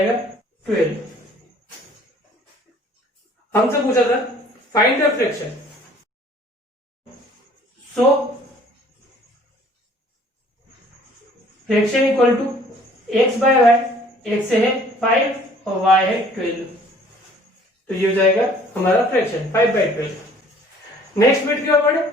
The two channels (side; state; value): both; normal; correlation 0.55